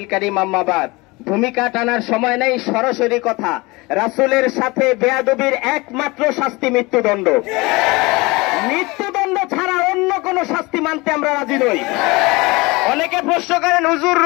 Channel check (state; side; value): quieter; right; 23.9 dB